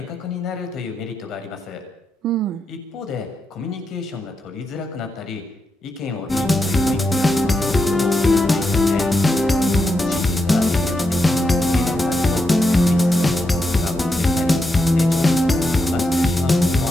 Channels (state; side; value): normal; both; correlation 0.85